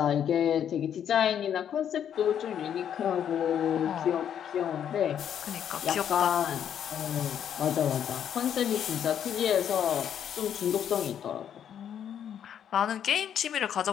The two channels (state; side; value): quieter; right; 9.2 dB